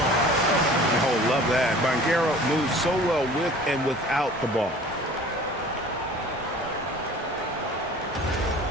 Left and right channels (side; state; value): both; normal; correlation 0.46